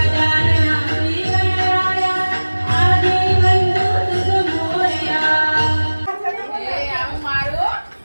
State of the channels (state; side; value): inverted; both; correlation -1.00